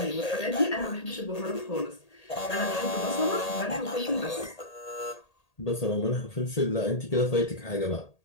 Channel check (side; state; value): right; late; 1.8 ms